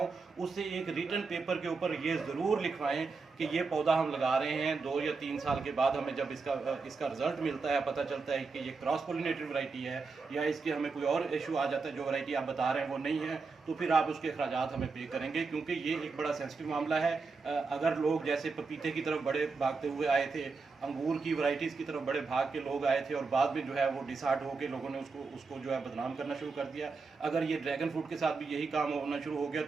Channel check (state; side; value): quieter; left; 4.5 dB